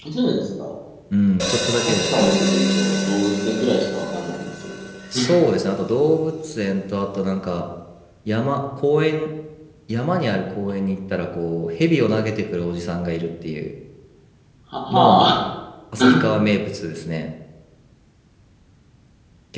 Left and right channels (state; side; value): identical; both; correlation 1.00